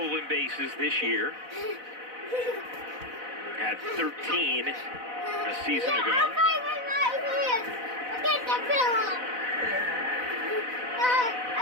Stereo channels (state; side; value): late; left; 4.0 ms